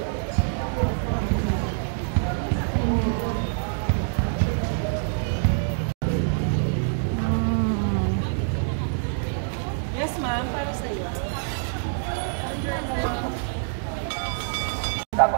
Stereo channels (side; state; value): left; silent; digital silence